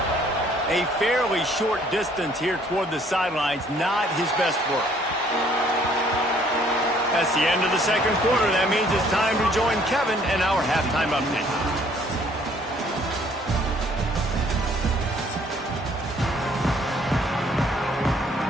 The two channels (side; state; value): both; normal; correlation 0.61